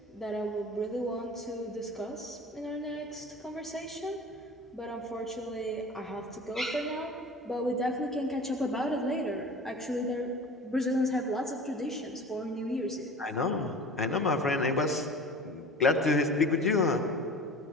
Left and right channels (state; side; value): normal; both; correlation 0.39